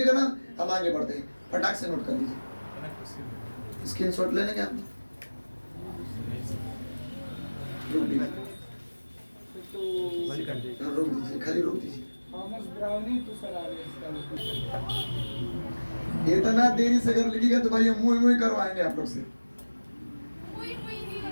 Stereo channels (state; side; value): inverted; both; correlation -1.00